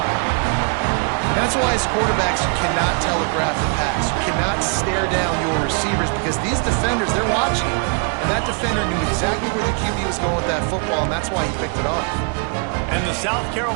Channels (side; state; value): left; quieter; 38.5 dB